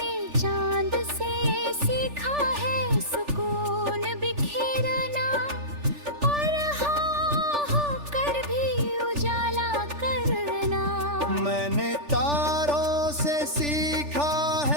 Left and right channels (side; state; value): left; late; 3.4 ms